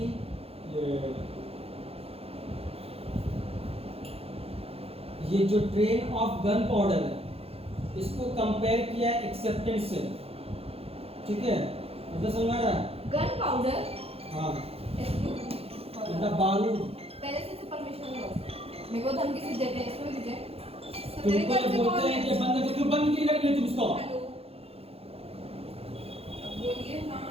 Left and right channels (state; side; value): late; left; 0.29 ms